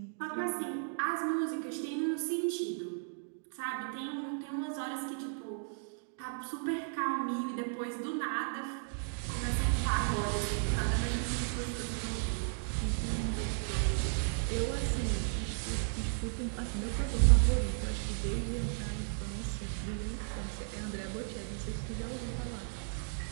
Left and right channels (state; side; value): silent; left; digital silence